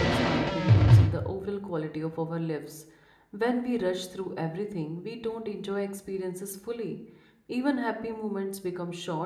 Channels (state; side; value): identical; both; correlation 1.00